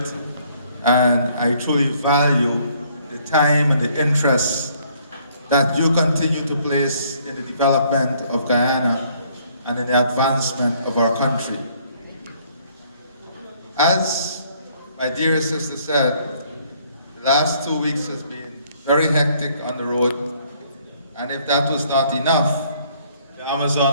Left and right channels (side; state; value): both; inverted; correlation -0.64